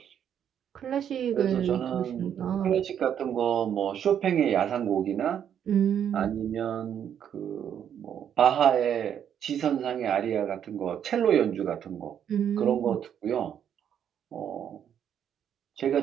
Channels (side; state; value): left; quieter; 9.0 dB